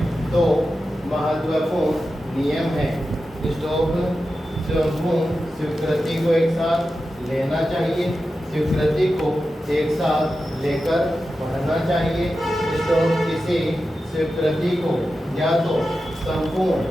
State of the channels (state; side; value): normal; both; correlation 0.92